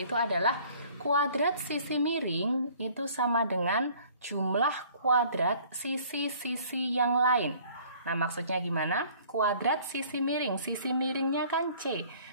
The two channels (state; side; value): inverted; both; correlation -0.54